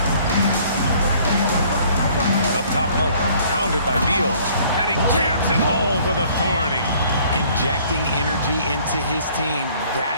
Up top, Monk, pounded by Beal, and he jams it home with authority. Injecting energy into his team.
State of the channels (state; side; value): inverted; both; correlation -0.57